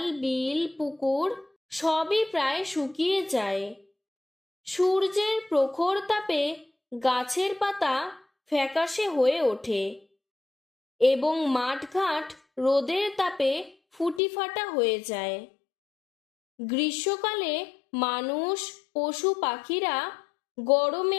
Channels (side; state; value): right; drops out; at 14.2 s